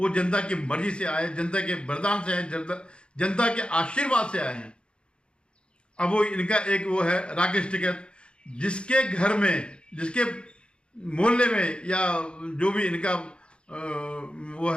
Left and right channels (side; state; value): right; late; 0.056 ms